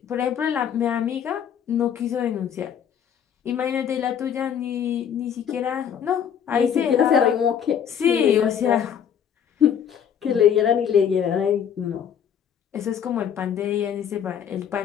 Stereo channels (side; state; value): right; quieter; 8.4 dB